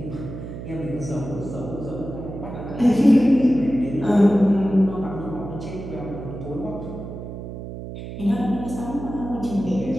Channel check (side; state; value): right; noise; hum, 9 dB below the sound